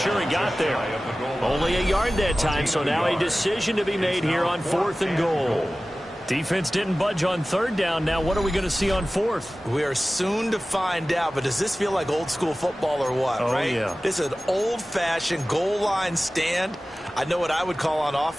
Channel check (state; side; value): normal; both; correlation 0.97